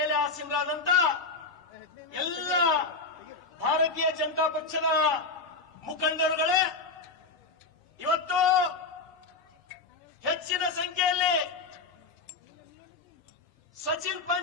ಆಸೀನರಾದಂತ ಎಲ್ಲ ಭಾರತೀಯ ಜನತಾ ಪಕ್ಷದ ಮುಖಂಡರುಗಳೇ, ಇವತ್ತು ಹೆಚ್ಚಿನ ಸಂಖ್ಯೆಯಲ್ಲಿ ಸಚಿನ್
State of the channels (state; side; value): quieter; right; 3.9 dB